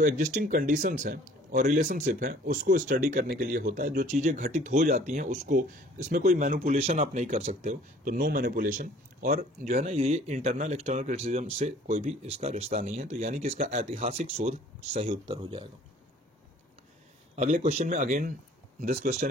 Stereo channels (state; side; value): normal; both; correlation 0.53